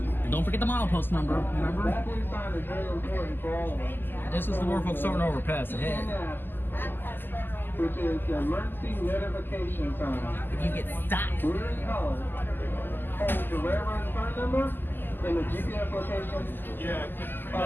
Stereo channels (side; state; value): right; late; 0.094 ms